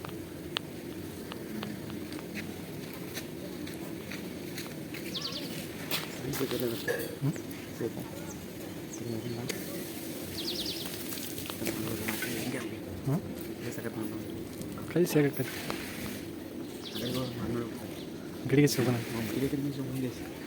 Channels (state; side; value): identical; both; correlation 1.00